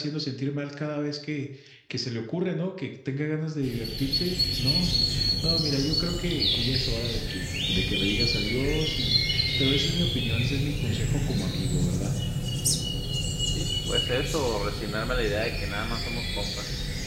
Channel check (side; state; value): both; identical; correlation 1.00